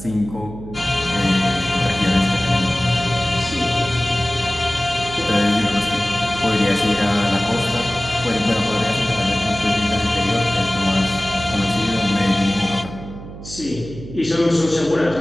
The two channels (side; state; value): right; noise; hum, 13 dB below the sound